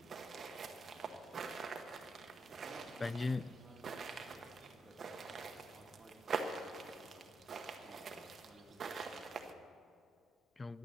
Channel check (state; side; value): normal; both; correlation 0.82